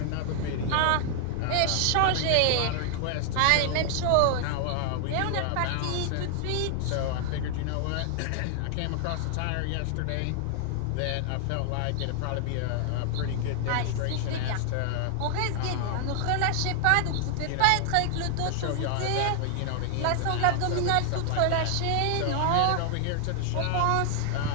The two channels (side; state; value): both; different; correlation 0.00